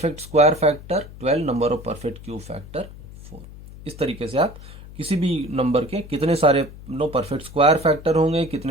square factor 12, number of perfect cube factor 4। इस तरीके से आप किसी भी नंबर के कितने सारे परफेक्ट स्क्वायर फैक्टर होंगे,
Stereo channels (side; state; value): left; noise; hum, 16 dB below the sound